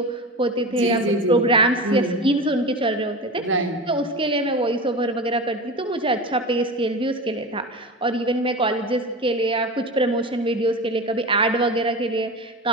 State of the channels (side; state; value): both; normal; correlation 0.28